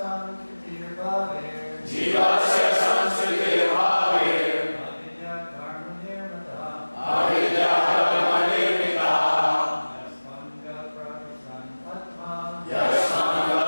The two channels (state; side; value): inverted; both; correlation -1.00